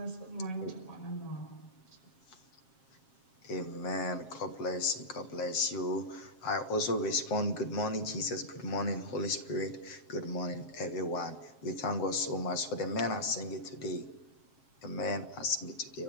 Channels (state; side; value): late; right; 7.5 ms